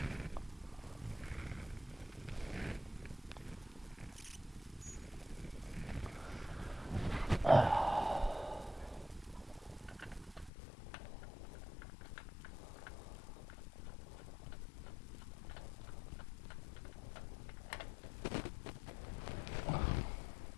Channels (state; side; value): drops out; right; at 10.5 s